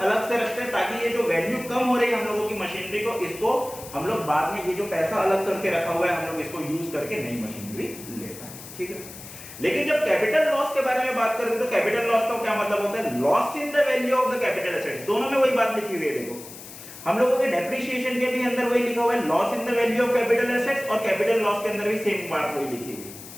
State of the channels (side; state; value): left; noise; hiss, 15 dB below the sound